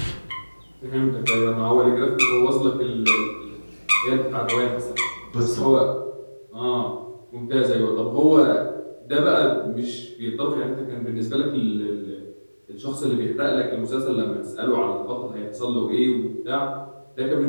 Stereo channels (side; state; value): both; inverted; correlation -1.00